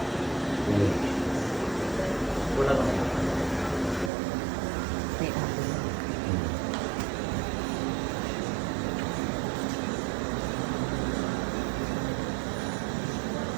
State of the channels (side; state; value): left; drops out; at 4.1 s